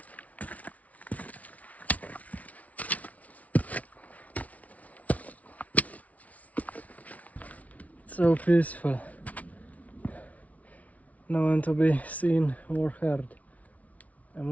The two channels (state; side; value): late; right; 0.069 ms